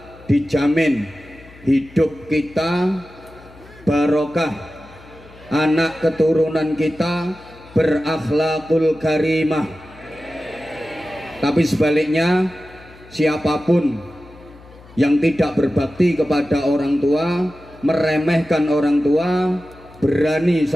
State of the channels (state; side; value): noise; left; hum, 23 dB below the sound